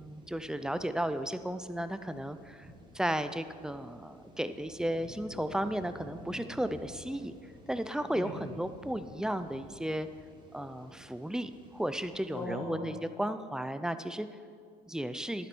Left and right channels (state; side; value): normal; both; correlation 0.90